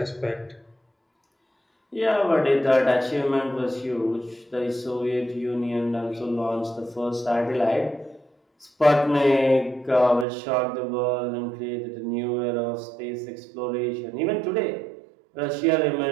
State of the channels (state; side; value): drops out; left; at 10.2 s